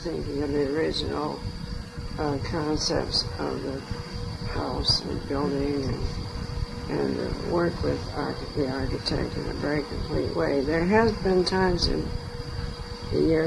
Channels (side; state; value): both; identical; correlation 1.00